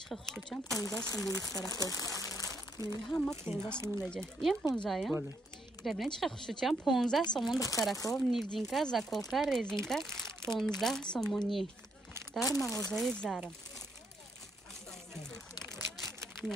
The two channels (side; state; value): both; normal; correlation 0.75